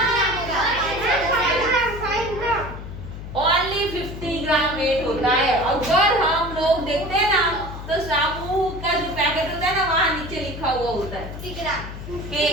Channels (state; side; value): noise; left; hum, 10 dB below the sound